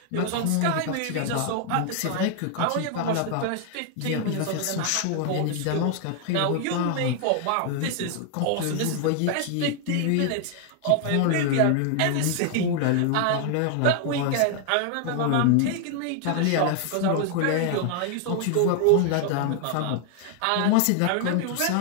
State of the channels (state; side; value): different; both; correlation 0.00